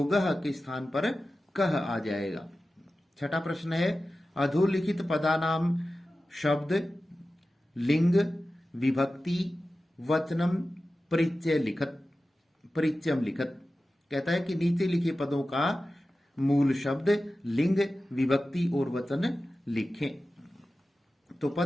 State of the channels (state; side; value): normal; both; correlation 0.94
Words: के स्थान पर कह आ जाएगा। छठा प्रश्न है अधोलिखित पदानाम शब्द लिंग विभक्ति वचनम परिचय लिखत परिचयम लिखत। कहता है कि नीचे लिखे पदों का मूल शब्द लिंग विभक्ति और वचन लिखें। तो